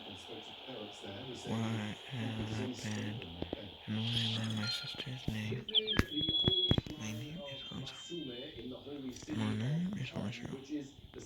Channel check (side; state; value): both; identical; correlation 1.00